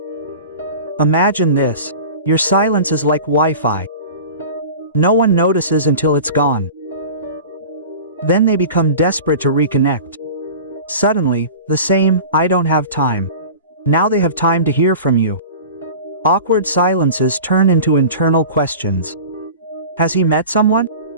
Imagine this. Your silence is like Wi-Fi. No one notices until it's gone. Then they become desperate to reconnect. Suddenly, the same, "I don't have time." Now they have time to hear from you. Awkward silences turn into internal questions. Has he met someone?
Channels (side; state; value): both; inverted; correlation -0.37